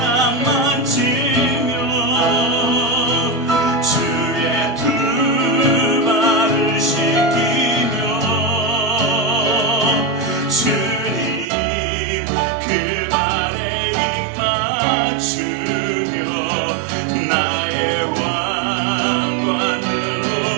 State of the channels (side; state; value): left; drops out; at 11.5 s